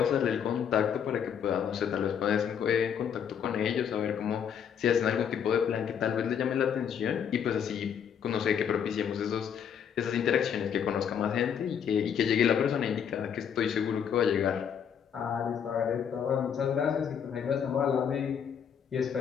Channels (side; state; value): right; quieter; 8.0 dB